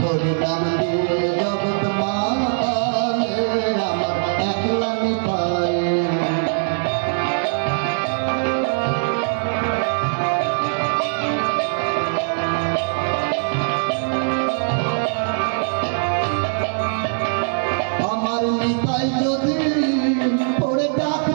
হরি নাম দিয়ে জগৎ মাতালে আমার একলা নিতাই। আমার নিতাই যদি ওরে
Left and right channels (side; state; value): left; silent; digital silence